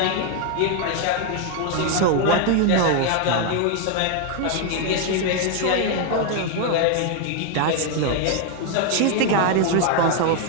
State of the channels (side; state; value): both; different; correlation 0.00